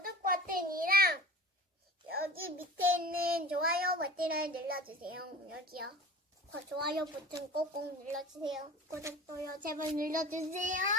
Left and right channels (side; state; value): both; normal; correlation 0.39